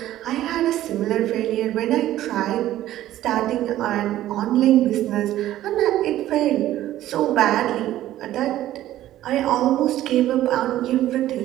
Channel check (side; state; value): left; quieter; 13.7 dB